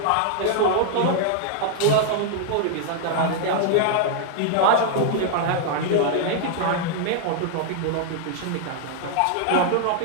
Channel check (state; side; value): different; both; correlation 0.00